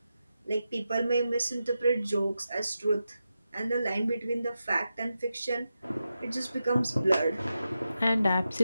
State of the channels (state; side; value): inverted; both; correlation -0.89